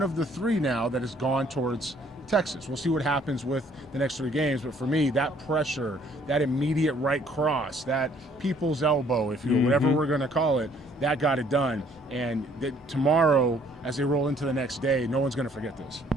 of the 3 now that has gone towards Texas. We'll see what happens with the next 3 games, but for me, that pressure, that immediate right cross, that people's elbow, if you will, whatever we're going to call it, that got it done. And tomorrow, as they roll into the next day, no one's going to forget this.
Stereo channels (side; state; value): both; normal; correlation 0.61